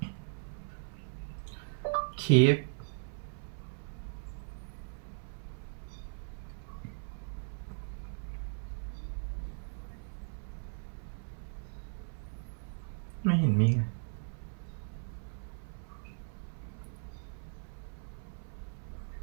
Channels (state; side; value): silent; left; 53 dB below the other